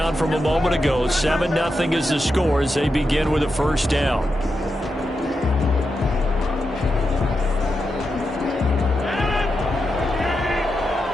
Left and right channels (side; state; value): both; normal; correlation 0.87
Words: from a moment ago. 7-0 is the score as they begin with a first down.